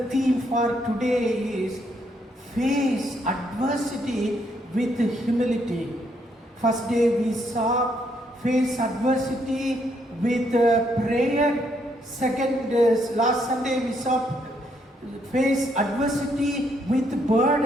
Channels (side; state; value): both; normal; correlation 0.73